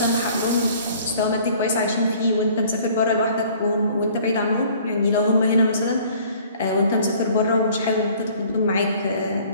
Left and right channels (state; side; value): inverted; both; correlation -0.54